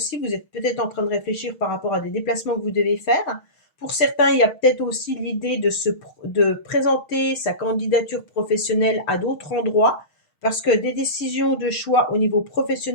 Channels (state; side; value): late; right; 6.3 ms